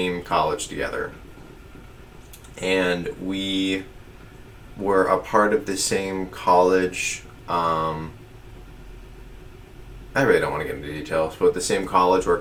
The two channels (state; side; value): identical; both; correlation 1.00